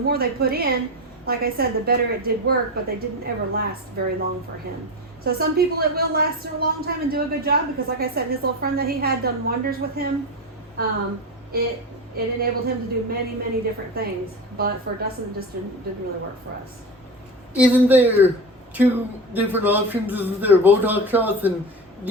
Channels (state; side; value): normal; both; correlation 0.24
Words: they put in, like I said, the better it did work, but they didn't ever last very long for him. So some people it will last a long time and do a good job because, like I said, his little friend that he had done wonders with him. It enabled him to do many, many different things. But for Dustin, it just didn't really work for us. Isn't there two different options? Isn't there Botox shots and